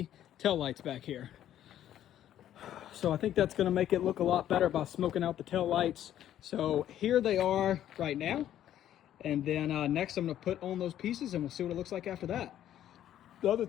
tail lights back here. So I think that's going to make it look a lot better by smoking out the tail lights. So here they are right now, and then next I'm going to put on those pieces and we'll see what it looks like after that. The other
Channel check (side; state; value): right; quieter; 11.5 dB